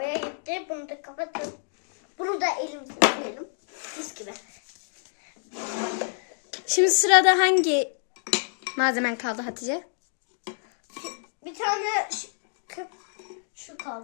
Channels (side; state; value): right; silent; digital silence